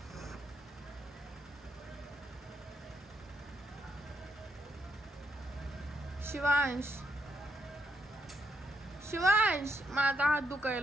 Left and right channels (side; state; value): both; normal; correlation 0.77